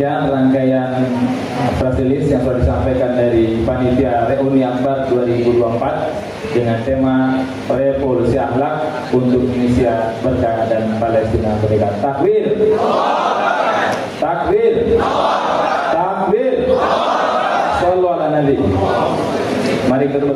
rangkaian press release yang sudah disampaikan dari Panitia Reuni Akbar 2024 dengan tema Revolusi Akhlak untuk Indonesia Berkah dan Palestina Merdeka. Takbir! Takbir! Takbir! Sallu ala Nabi. Mari kita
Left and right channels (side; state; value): both; identical; correlation 1.00